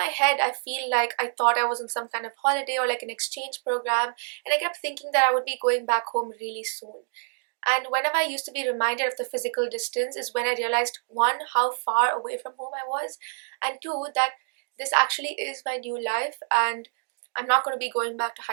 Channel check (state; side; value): silent; left; 60 dB below the other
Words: head, I feel like I thought I was on some kind of holiday or like an exchange program, and I kept thinking that I would be going back home really soon. And whenever I used to be reminded of the physical distance, is when I realized one, how far away from home I was, and two, that this actually is my new life, and I'm not going to be going back to